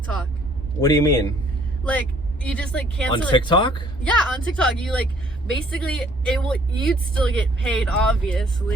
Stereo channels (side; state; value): both; normal; correlation 0.61